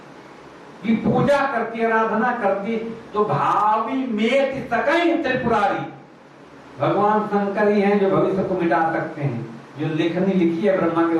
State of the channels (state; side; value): identical; both; correlation 1.00